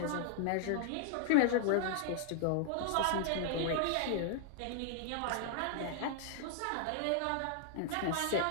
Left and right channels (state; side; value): different; both; correlation 0.00